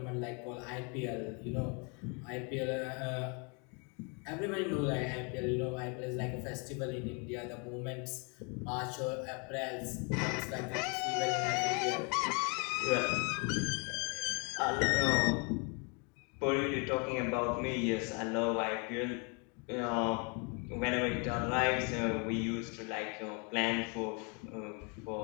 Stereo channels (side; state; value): right; quieter; 34.3 dB